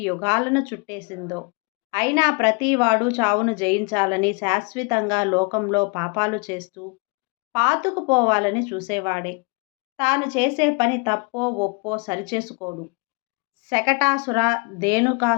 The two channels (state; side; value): quieter; right; 31.3 dB